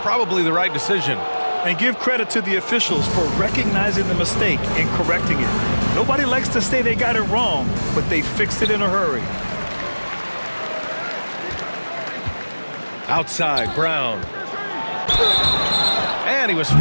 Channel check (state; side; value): inverted; both; correlation -1.00